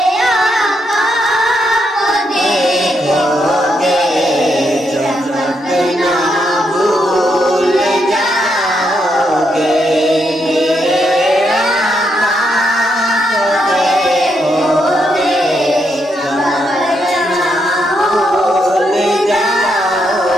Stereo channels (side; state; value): both; normal; correlation 0.79